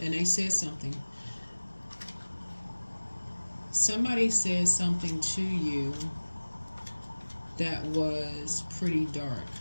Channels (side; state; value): both; inverted; correlation -1.00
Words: and they said something. Somebody said something to you that was pretty dark,